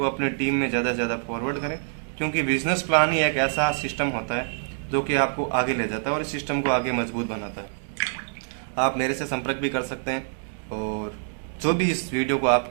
अपने टीम में ज़्यादा से ज़्यादा फॉरवर्ड करें, क्योंकि बिजनेस प्लान ही एक ऐसा सिस्टम होता है जो कि आपको आगे ले जाता है और इस सिस्टम को आगे मजबूत बनाता है। आप मेरे से संपर्क भी कर सकते हैं, और जो भी इस वीडियो को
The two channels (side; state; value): left; silent; digital silence